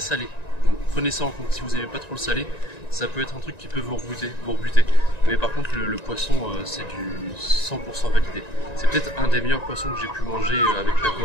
Donc prenez ça en compte, si vous n'aimez pas trop le salé, ça peut être un truc qui peut vous rebuter. Mais par contre, le poisson, c'est du 100% validé. C'est peut-être un des meilleurs poissons que j'ai pu manger avec la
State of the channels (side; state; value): right; late; 1.9 ms